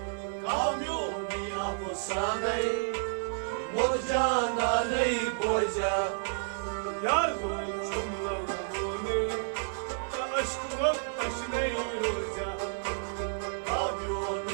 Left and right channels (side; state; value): left; silent; digital silence